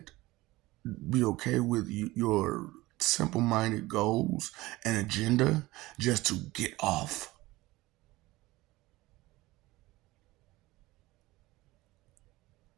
Be okay with your simple minded goals and agenda just to get off?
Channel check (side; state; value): left; quieter; 19.3 dB